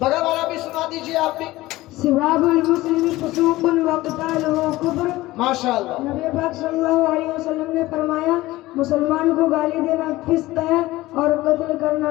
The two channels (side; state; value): right; quieter; 18.1 dB